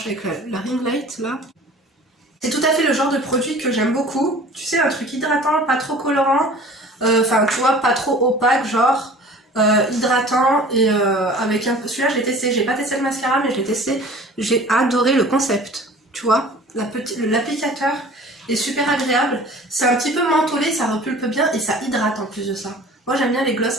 avec la ring light là. C'est tout à fait le genre de produit que j'aime beaucoup. Tu sais, un truc hydratant, pas trop colorant. Enfin, tu vois, pas trop opaque, genre hydratant. Et avec un peu... Celui-là, je l'ai testé. J'ai pas testé le mascara, mais je l'ai testé. J'ai adoré le concept. Tu vois, l'applicateur est super agréable. C'est un petit peu mentholé, ça repulpe bien et ça hydrate en plus de ça. Moi, j'aime bien les gloss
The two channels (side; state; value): both; normal; correlation 0.45